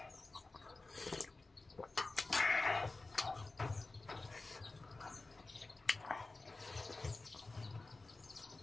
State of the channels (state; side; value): quieter; right; 3.3 dB